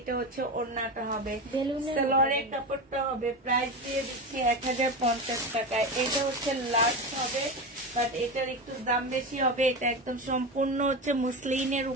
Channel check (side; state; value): both; normal; correlation 0.21